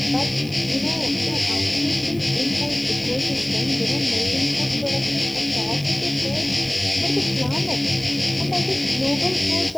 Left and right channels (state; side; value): noise; right; hiss, 22 dB below the sound